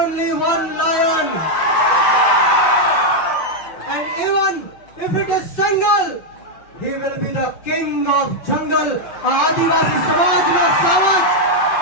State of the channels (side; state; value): right; late; 6.1 ms